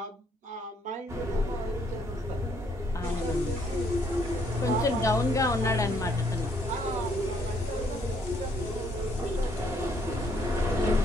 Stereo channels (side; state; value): both; normal; correlation 0.68